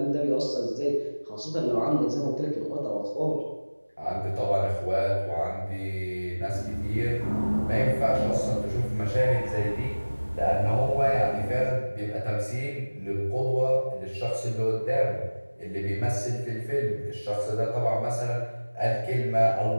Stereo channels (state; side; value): inverted; both; correlation -1.00